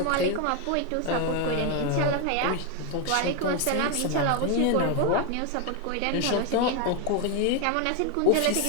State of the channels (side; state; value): both; different; correlation 0.01